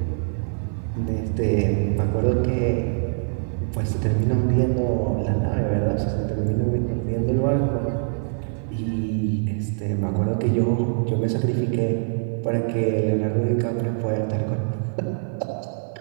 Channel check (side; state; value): left; silent; 63 dB below the other